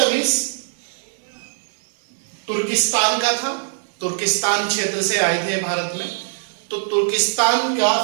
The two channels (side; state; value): left; silent; 65 dB below the other